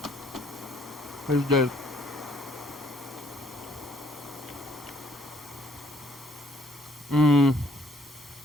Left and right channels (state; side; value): normal; both; correlation 0.65